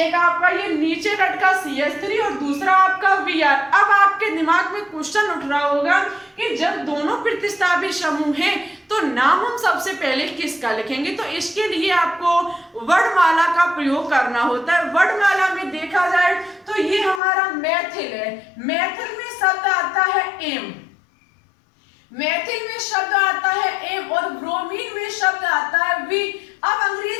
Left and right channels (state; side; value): drops out; right; at 17.2 s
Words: आपका ये नीचे लटका CH3 और दूसरा आपका Br। अब आपके दिमाग में क्वेश्चन उठ रहा होगा कि जब दोनों प्रतिस्थापी समूह हैं तो नाम हम सबसे पहले किसका लिखेंगे। तो इसके लिए आपको वर्णमाला का प्रयोग करना होता है। वर्णमाला में देखा जाए तो ये हमारा मैथिल है। मैथिल में शब्द आता है एम, मैथिल में शब्द आता है एम, और ब्रोमीन में शब्द आता है वी। अब